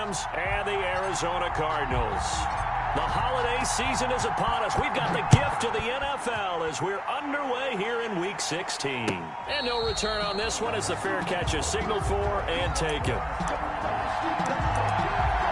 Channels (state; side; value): identical; both; correlation 1.00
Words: and the Arizona Cardinals. The holiday season is upon us. We've got the gift of the NFL as we're underway here in Week 16. And no return on this one as the fair catch is signaled for and taken.